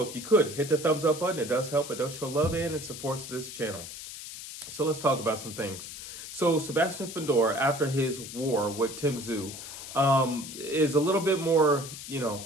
if you could, hit the thumbs up button. It does help. It does show love and it supports this channel. So let's talk about some things. So Sebastian Fundora, after his war with Tim Tszyu, is a little bit more, he's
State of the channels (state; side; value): noise; left; hiss, 11 dB below the sound